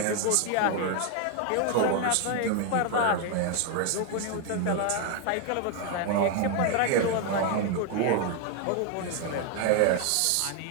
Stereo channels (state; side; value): different; both; correlation 0.01